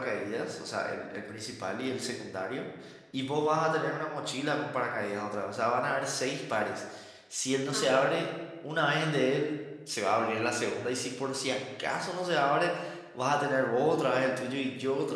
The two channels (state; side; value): identical; both; correlation 1.00